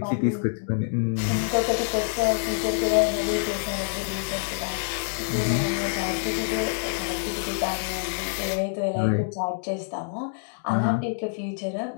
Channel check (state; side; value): silent; right; digital silence